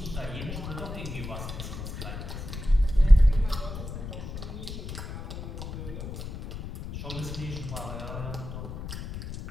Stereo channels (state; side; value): noise; left; rumble, 8 dB below the sound